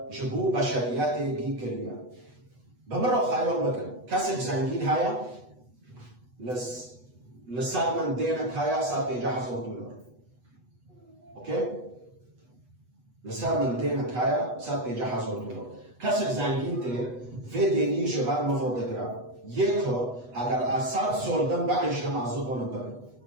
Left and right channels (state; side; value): late; left; 8.1 ms